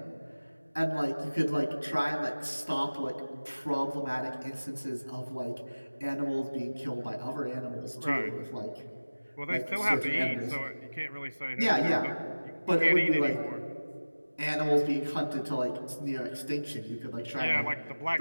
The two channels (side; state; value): both; inverted; correlation -1.00